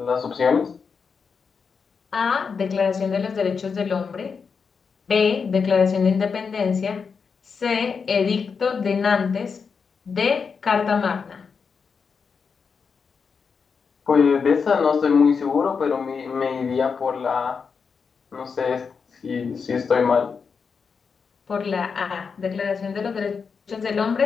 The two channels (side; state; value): right; quieter; 5.6 dB